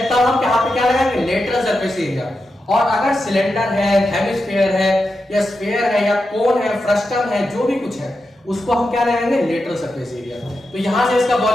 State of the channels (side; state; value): both; normal; correlation 0.88